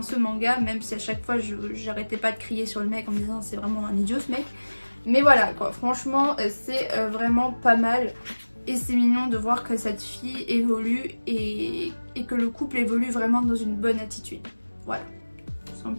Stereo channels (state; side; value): inverted; both; correlation -1.00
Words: ce manga, même si à chaque fois j'arrêtais pas de crier sur le mec en me disant c'est vraiment un idiot ce mec. Mais voilà quoi, franchement c'est vraiment pas mal et c'est mignon de voir que cette fille évolue et que le couple évolue vraiment dans une bonne attitude. Voilà, tout